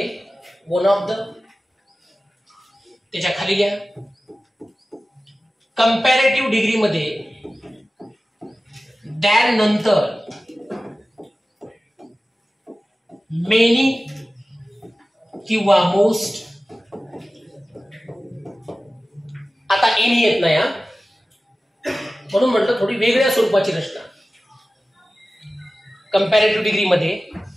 वन ऑफ द, त्याच्या खाली घ्या कंपॅरेटिव्ह डिग्री मध्ये दॅन नंतर मेनी किंवा मोस्ट. आता एनी येत नाही म्हणून म्हटलं थोडी वेगळ्या स्वरूपाची रचना. कंपॅरेटिव्ह डिग्री मध्ये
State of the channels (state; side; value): normal; both; correlation 0.96